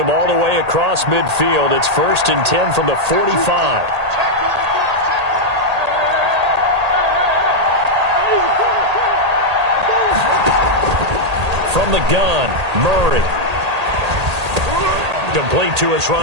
all the way across midfield. It's 1st and 10 from the 45. From the gun, Murray. Complete to his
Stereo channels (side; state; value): left; late; 1.8 ms